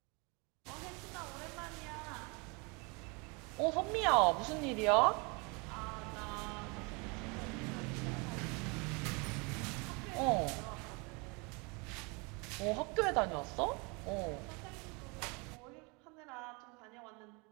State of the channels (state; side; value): quieter; left; 30.0 dB